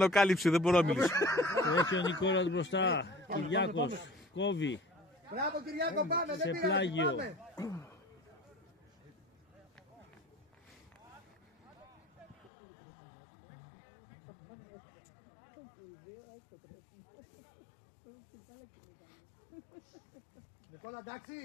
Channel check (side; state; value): right; drops out; at 12.5 s